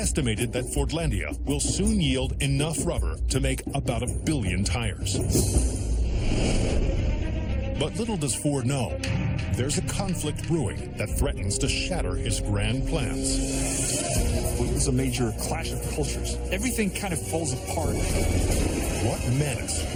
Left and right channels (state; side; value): identical; both; correlation 1.00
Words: that Fordlandia will soon yield enough rubber to make about 1 billion tires. But little does Ford know, there's a conflict brewing that threatens to shatter his grand plans. It was a major clash of cultures. Everything kind of falls apart. What menace